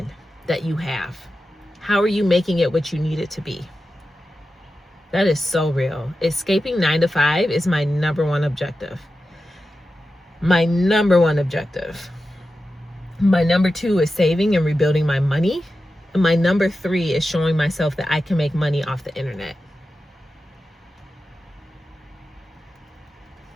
that you have? How are you making it what you need it to be? That is so real. Escaping 9 to 5 is my number one objective. My number one objective. My number 2 is saving and rebuilding my money. And my number 3 is showing myself that I can make money off the internet.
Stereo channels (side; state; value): both; normal; correlation 0.92